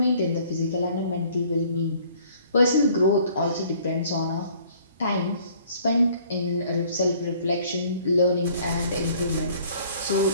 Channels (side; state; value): both; inverted; correlation -0.57